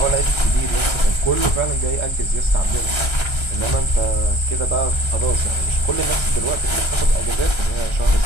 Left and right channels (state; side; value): late; right; 1.3 ms